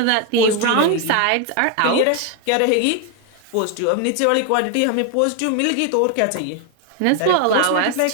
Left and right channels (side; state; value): both; different; correlation 0.01